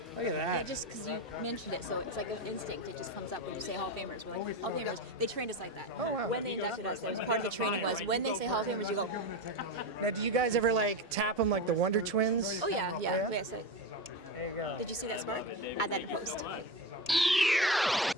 Look at that. Yeah, just because you mentioned it, so it's like an instinct. It just comes up when you say Hall of Famers. We're like, Hall of Famers. They trained us like that. Oh, wow. When they inducted us, that was part of the training was when they say Hall of Famers, you go. Now, do you guys ever like tap them like the Wonder Twins? Oh yeah. Yeah? So, There you go. did you see that spark? Add that in post.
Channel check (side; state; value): both; normal; correlation 0.20